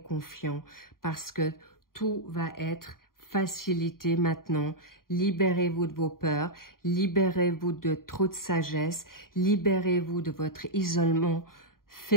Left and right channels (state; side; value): late; right; 0.91 ms